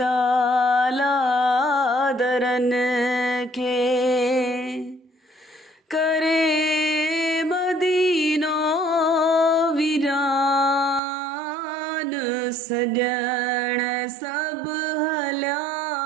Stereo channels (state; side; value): drops out; left; at 11.0 s